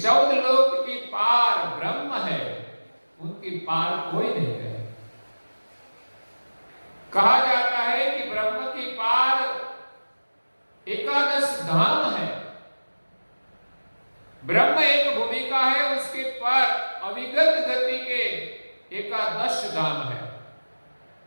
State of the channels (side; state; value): both; inverted; correlation -1.00